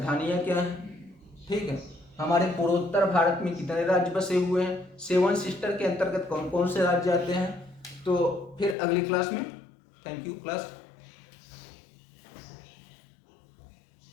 क्या हैं। ठीक है, हमारे पूर्वोत्तर भारत में कितने राज्य बसे हुए हैं, 7 सिस्टर के अंतर्गत कौन कौन से राज्य आते हैं। तो फिर अगली क्लास में, थैंक यू क्लास।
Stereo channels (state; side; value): drops out; right; at 8.8 s